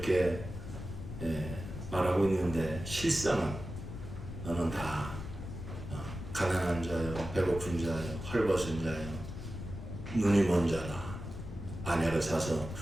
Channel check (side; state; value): left; noise; rumble, 9 dB below the sound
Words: 말하고 있는데 실상은 너는 다 가난한 자요, 배고픈 자요, 헐벗은 자요, 눈이 먼 자라, 아내를 사서